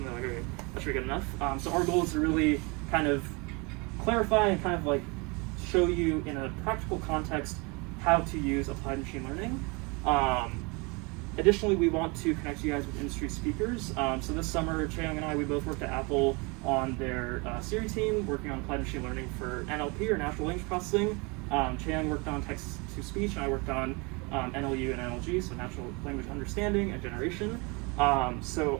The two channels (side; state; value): left; quieter; 29.1 dB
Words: they're okay, that should be good enough. So our goal is to really kind of clarify and kind of show you in a practical context how to use applied machine learning. Additionally, we want to connect you guys with industry speakers. So this summer, Chae Young and I, we both worked at Apple on their Siri team, working on applied machine learning for NLP, or natural language processing. Chae Young worked on text-to-speech, and I worked on NLU and NLG, so natural language understanding and generation. So